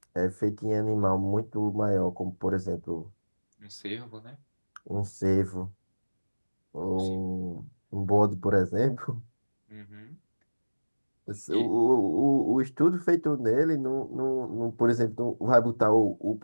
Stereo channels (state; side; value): inverted; both; correlation -1.00